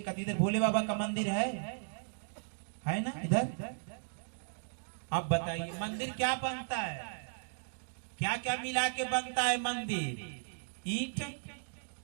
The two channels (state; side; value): silent; left; digital silence